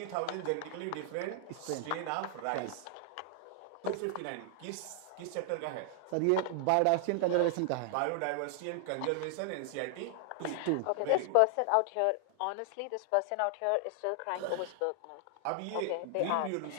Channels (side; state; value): both; different; correlation 0.00